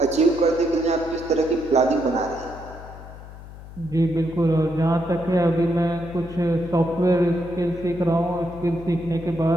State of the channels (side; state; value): left; noise; hum, 15 dB below the sound